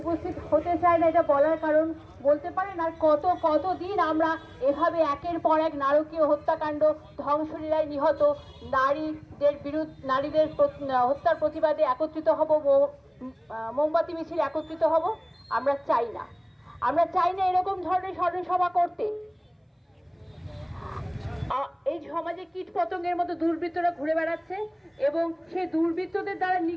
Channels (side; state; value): both; identical; correlation 1.00